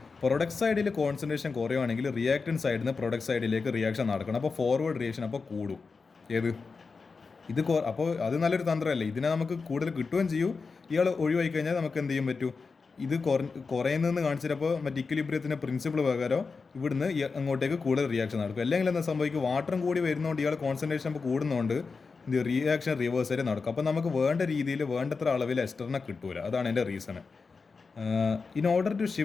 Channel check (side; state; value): right; quieter; 4.7 dB